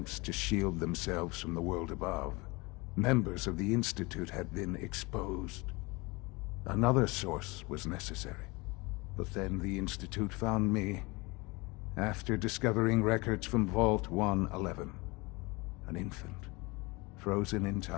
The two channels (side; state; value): right; quieter; 25.3 dB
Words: to shield themselves from the world above, members of the Institute had been exposed. Another source was necessary. But then the Institute found me after discovering records from Vault 111. An infant, frozen in